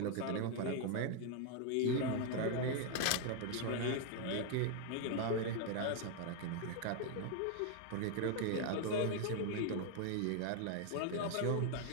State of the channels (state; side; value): different; both; correlation 0.00